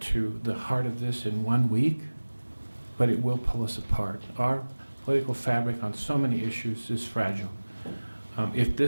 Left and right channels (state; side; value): inverted; both; correlation -1.00